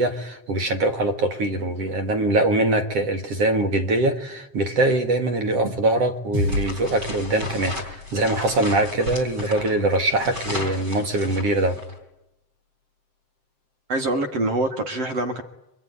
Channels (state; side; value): late; left; 7.7 ms